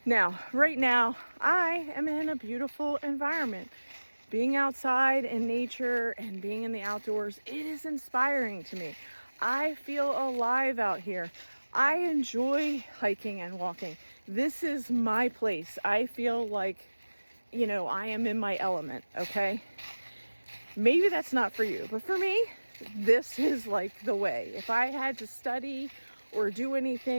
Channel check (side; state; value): both; inverted; correlation -1.00